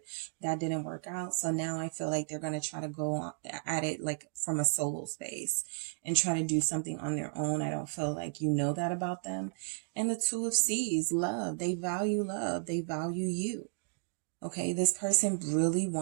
that didn't work out. So now I feel like they're going to try to go at it like from a solo space and try to do something on their own. I don't feel like you know that about them. And the Two of Swords, love. They value love. They value you. Okay, this person really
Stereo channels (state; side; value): silent; left; digital silence